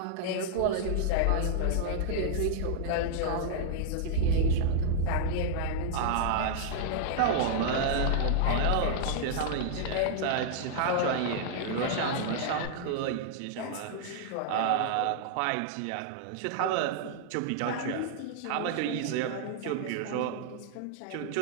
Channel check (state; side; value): different; both; correlation -0.01